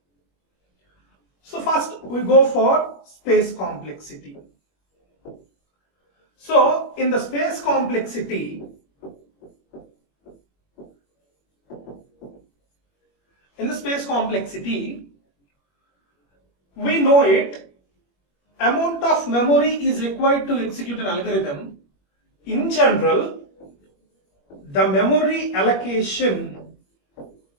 So first we go for space complexity. So in the space complexity, we know it, amount of memory is required to execute an algorithm. In general, the memory allocation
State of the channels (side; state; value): right; late; 21 ms